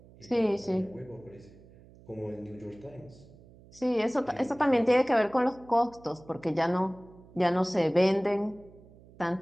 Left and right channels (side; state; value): right; noise; hum, 23 dB below the sound